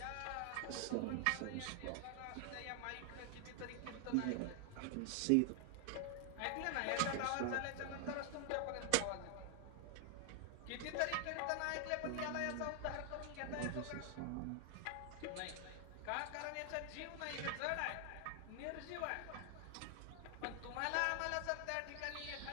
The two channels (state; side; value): different; both; correlation 0.00